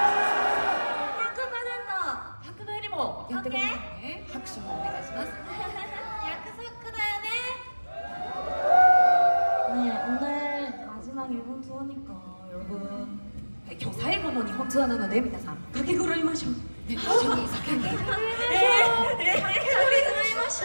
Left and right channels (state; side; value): inverted; both; correlation -1.00